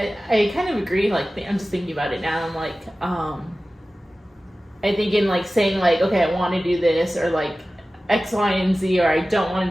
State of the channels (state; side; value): normal; both; correlation 0.96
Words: kind of agree. Like, I'm just thinking about it now. I'm like, I think in, like, saying, like, okay, I want to do this, or, like, X, Y, and Z, or I don't want